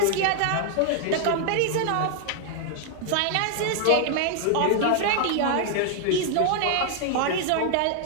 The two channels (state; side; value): different; both; correlation 0.00